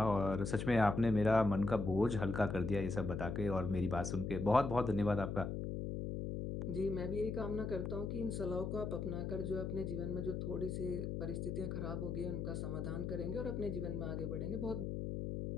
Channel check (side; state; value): left; noise; hum, 3 dB below the sound